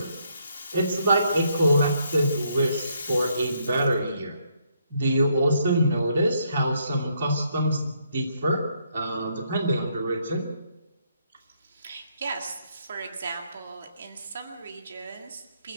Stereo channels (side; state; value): both; inverted; correlation -0.73